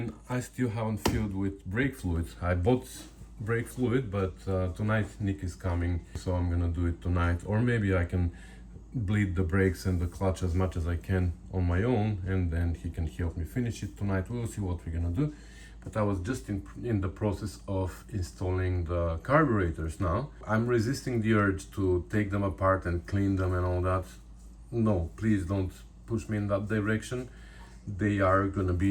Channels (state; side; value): identical; both; correlation 1.00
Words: I still haven't filled with brake fluid. I bought brake fluid, but tonight Nick is coming, so I'm gonna do it tonight, or maybe I can bleed the brakes and the clutch as much as I can on my own, and then he can help me finish it tonight. We'll see what we're gonna do. But I was just in the process of installing the carburetors now. I'm resisting the urge to take them apart and clean them and all that. No, please don't push me in that direction. They are gonna